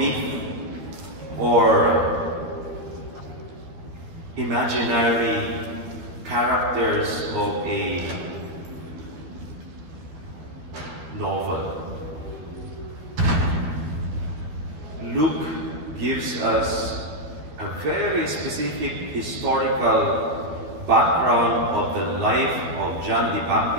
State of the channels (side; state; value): left; late; 12 ms